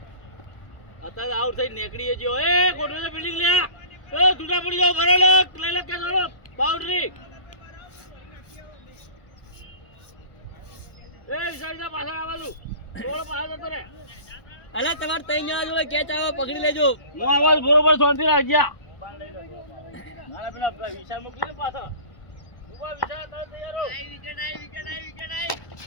અત્યારે આઉટ થઈ નીકળી ગયો. એ કોટલે બિલ્ડિંગ લે એ જુદા પડી જાવ ભરે લે લઈ લે કે ચાલો બાઉન્ડ્રી એ સાઈડના પાછળ આવવાનું બોલ પાછળ જતો રે. અલા તમાર તઈ જણા જોડે કેચ આવે પકડી લેજો. હું આવાજ બરોબર શાંતિ રાખ ગયા. મારા પેલા વિશાલ મોકલી દે પાછળ. ઉભા વિશાલ તમે તૈયાર રહો. આઈ વિકેટ આઈ વિકેટ આઈ વિકેટ આઈ.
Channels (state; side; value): late; right; 1.1 ms